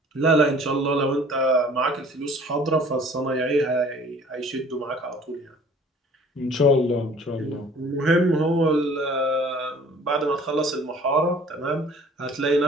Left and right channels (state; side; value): normal; both; correlation 0.51